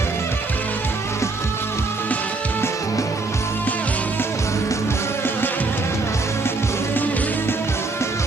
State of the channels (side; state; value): left; quieter; 3.5 dB